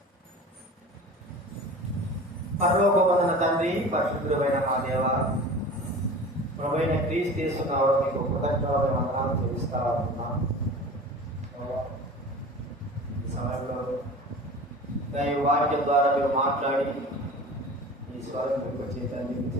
పరలోకమందున తండ్రి, పరిశుద్ధుడైన మా దేవ, ప్రభువైన క్రీస్తు యేసు నామమున మీకు కృతజ్ఞతలు వందనాలు చెల్లిస్తా ఉన్నాం. ఈ సమయంలో దైవ వాక్యం ద్వారా మీరు మాట్లాడి ఈ స్వరం మీకు చేతండి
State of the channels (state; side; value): normal; both; correlation 0.38